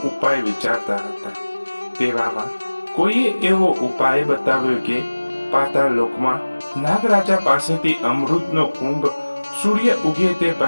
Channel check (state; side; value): inverted; both; correlation -1.00